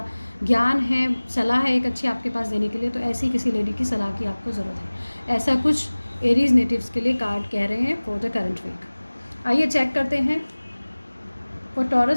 ज्ञान है, सलाह है एक अच्छी आपके पास देने के लिए, तो ऐसी किसी लेडी की सलाह की आपको ज़रूरत है। ऐसा कुछ एरीज नेटिव्स के लिए कार्ड कह रहे हैं फॉर द करंट वीक। आइए चेक करते हैं for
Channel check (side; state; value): both; inverted; correlation -1.00